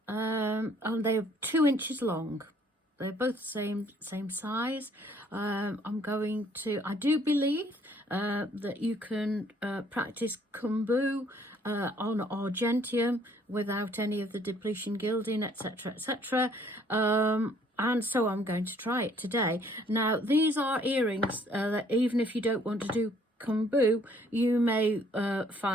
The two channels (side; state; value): both; normal; correlation 0.62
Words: and they're 2 inches long. They're both the same size. I'm going to, I do believe that you can practice Keum Boo on argentium without any of the depletion gilding, etc., etc. And so I'm going to try it today. Now, these are earrings that even if you don't want to do Keum Boo, you may